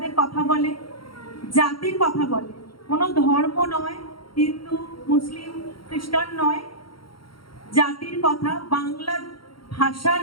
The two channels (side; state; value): right; late; 0.73 ms